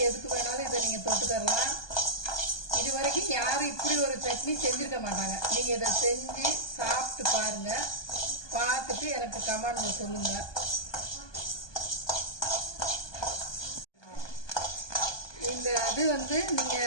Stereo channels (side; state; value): right; late; 1.2 ms